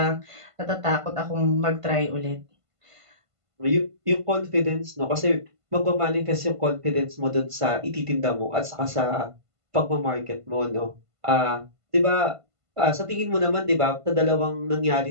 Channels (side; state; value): left; late; 1.5 ms